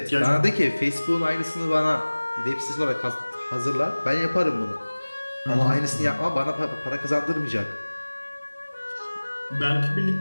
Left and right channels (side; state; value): both; inverted; correlation -1.00